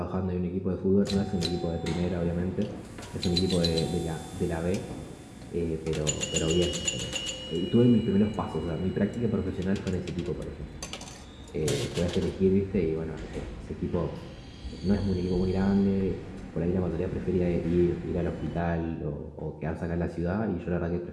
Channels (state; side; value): identical; both; correlation 1.00